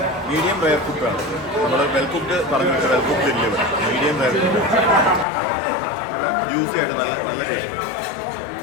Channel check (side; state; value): right; drops out; at 5.2 s